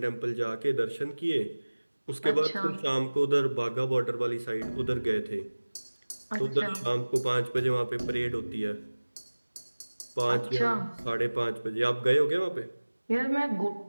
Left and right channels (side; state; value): both; inverted; correlation -1.00